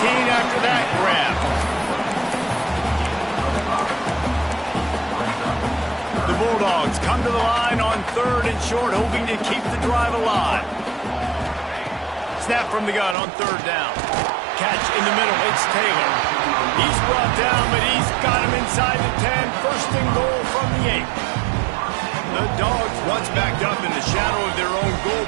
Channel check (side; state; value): left; drops out; at 13.2 s